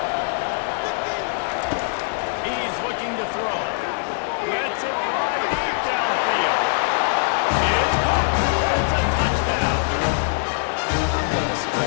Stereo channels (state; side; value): silent; right; digital silence